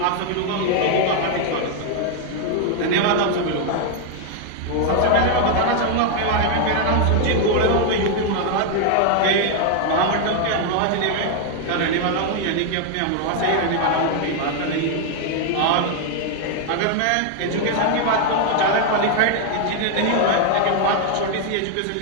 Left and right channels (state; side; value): different; both; correlation 0.00